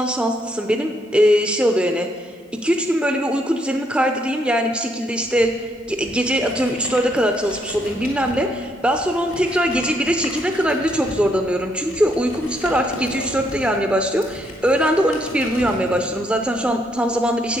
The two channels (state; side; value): normal; both; correlation 0.73